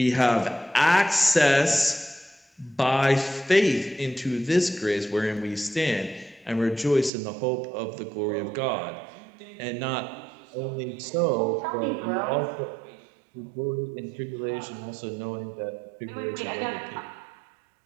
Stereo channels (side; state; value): left; drops out; at 7.1 s